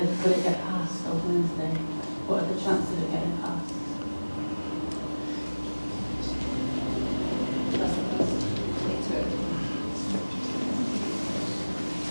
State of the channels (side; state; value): both; inverted; correlation -1.00